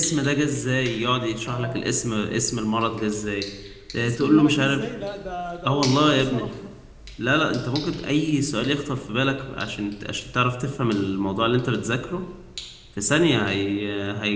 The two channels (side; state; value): both; identical; correlation 1.00